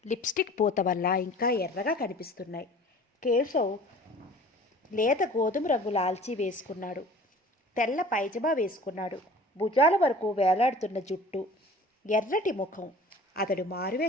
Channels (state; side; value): normal; both; correlation 0.46